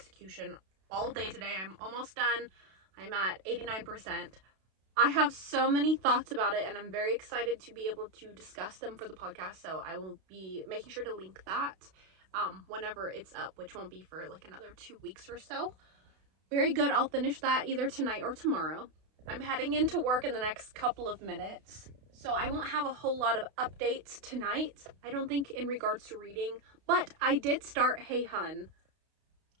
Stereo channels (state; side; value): late; left; 32 ms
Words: all day today. I'm almost done. I'm at 89%. I have so many thoughts about it, and I'm very excited to be able to discuss them for the podcast, so I will be making sure to link that whenever it's up, which won't be for like another 2 weeks or so. Very good. I'll finish that either tonight or tomorrow. I'm heading into work in the next couple of minutes, so I won't have a whole lot of updates tonight, I don't think, in regards to reading, but I did start Hey Hun,